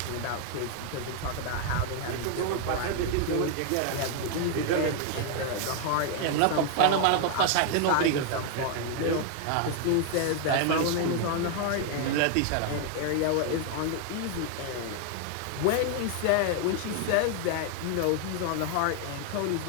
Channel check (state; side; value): different; both; correlation 0.00